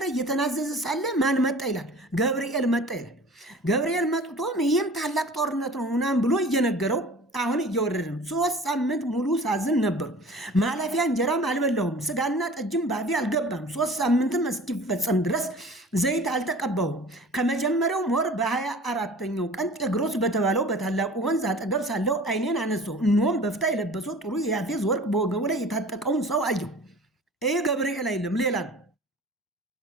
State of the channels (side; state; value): both; normal; correlation 0.43